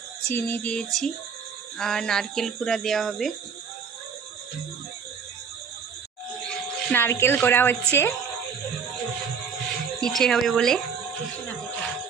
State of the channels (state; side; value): quieter; left; 6.3 dB